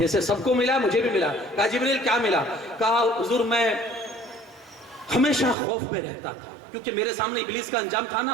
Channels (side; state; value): left; drops out; at 5.6 s